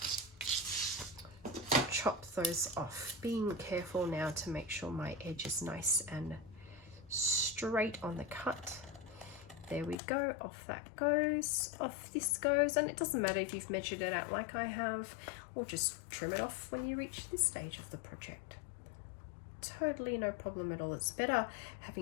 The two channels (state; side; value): drops out; right; at 10.0 s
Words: chop those off. Being careful now to make sure my edge is nice and straight on the cut. There we go, off that goes, off this goes, and it doesn't matter if you've measured it out like I have, or just trim it off when you reach this stage of the project. Totally no problem at all. It's better